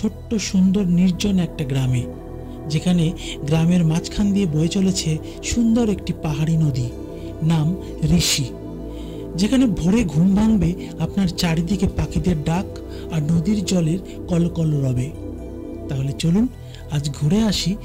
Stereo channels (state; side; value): identical; both; correlation 1.00